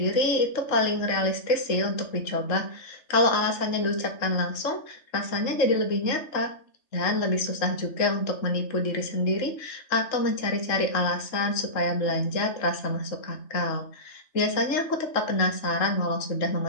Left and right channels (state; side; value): late; right; 3.7 ms